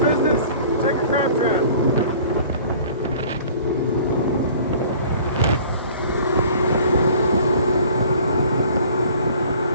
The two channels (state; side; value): inverted; both; correlation -0.49